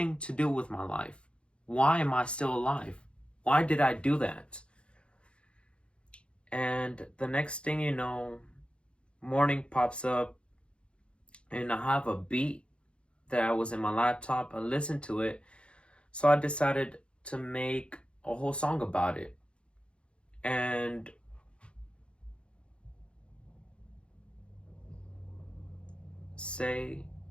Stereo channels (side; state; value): right; late; 0.058 ms